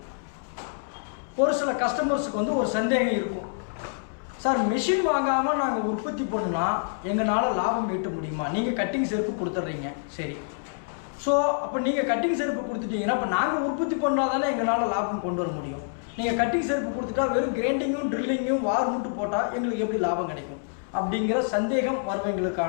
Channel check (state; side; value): silent; right; 60 dB below the other